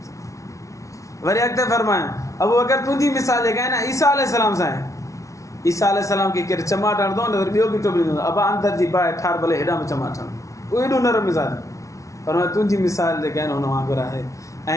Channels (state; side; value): late; right; 0.15 ms